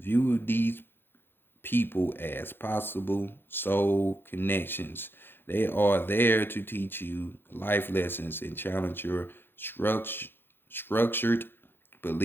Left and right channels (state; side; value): late; right; 0.10 ms